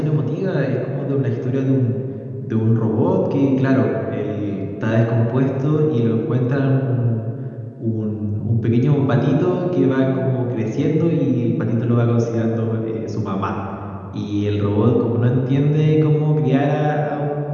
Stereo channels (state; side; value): identical; both; correlation 1.00